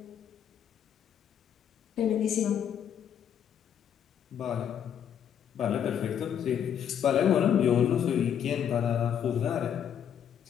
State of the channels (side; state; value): right; quieter; 8.9 dB